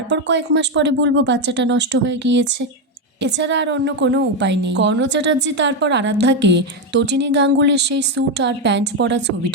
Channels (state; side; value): normal; both; correlation 0.07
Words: কয়েক মাস পরে বলবো বাচ্চাটা নষ্ট হয়ে গিয়েছে। এছাড়া আর অন্য কোনো উপায় নেই। কর্ণ চ্যাটার্জি তারপর আরাধ্যাকে তটিনী গাঙ্গুলির সেই স্যুট আর প্যান্ট পরা